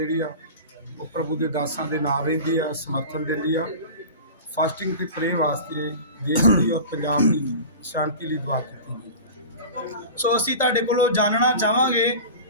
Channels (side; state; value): both; inverted; correlation -0.34